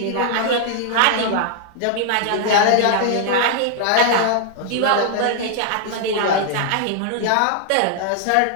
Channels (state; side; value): different; both; correlation -0.01